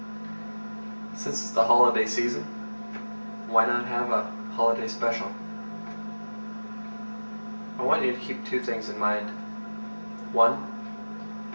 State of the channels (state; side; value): inverted; both; correlation -1.00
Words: Since it's the holiday season, why not have a holiday special? I want you to keep two things in mind. One,